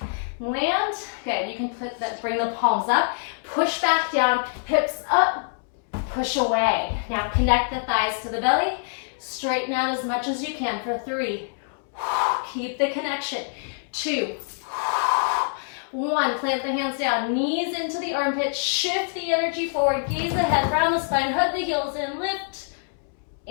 land. Good, you can bring the palms up, push back down, hips up, push away. Now connect the thighs to the belly, straighten out as much as you can for 3. Keep the connection. 2. 1, plant the hands down, knees into the armpits, shift the energy forward, gaze ahead, round the spine, hug the heels in, lift,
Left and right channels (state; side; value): silent; right; 62 dB below the other